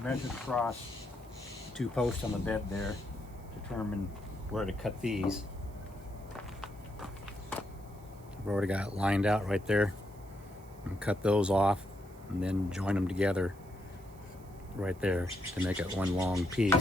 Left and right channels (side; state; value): right; noise; hiss, 26 dB below the sound